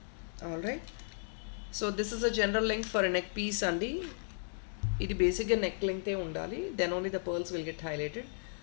All right, so this is a general length for a neck piece అండి. ఇది బేసిక్గా నెక్ లెంగ్తే ఉండాలి, then only the pearls will get highlighted.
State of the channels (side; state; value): right; silent; digital silence